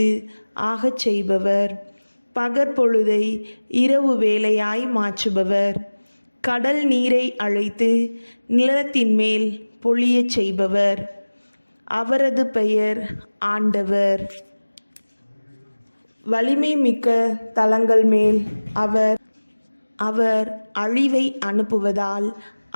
ஆகச் செய்பவர், பகற்பொழுதை இரவு வேளையாய் மாற்றுபவர், கடல் நீரை அழைத்து நிலத்தின் மேல் பொழியச் செய்பவர். அவரது பெயர் ஆண்டவர். வலிமை மிக்க தலங்கள் மேல் அவர் அழிவை அனுப்புவதால்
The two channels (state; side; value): inverted; both; correlation -1.00